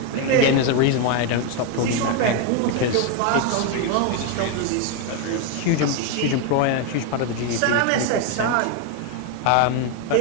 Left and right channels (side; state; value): both; different; correlation 0.01